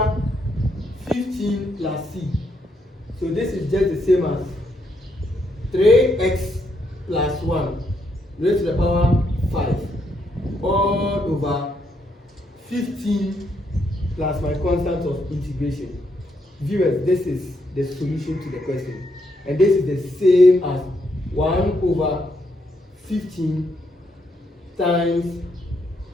15 plus c. So this is just the same as 3x plus 1 raised to the power 5 all over 15 plus my constant of integration. Viewers, this is the solution to the question. And this is the same as 1 over 15 times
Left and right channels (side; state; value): both; normal; correlation 0.76